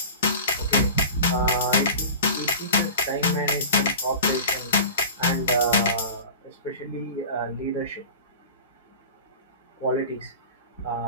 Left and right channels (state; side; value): inverted; both; correlation -0.36